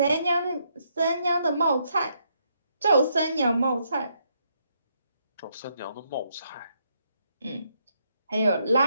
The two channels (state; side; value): inverted; both; correlation -0.75